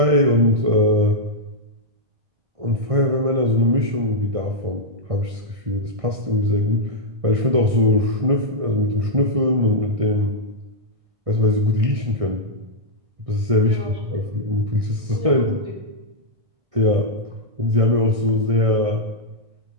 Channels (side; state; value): left; late; 1.6 ms